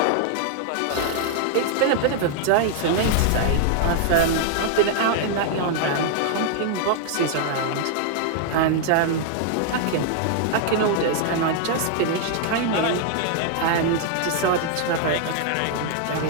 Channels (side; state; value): both; different; correlation 0.00